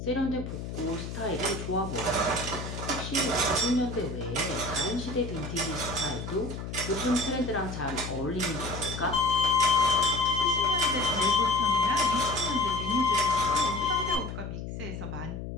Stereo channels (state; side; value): noise; left; hum, 7 dB below the sound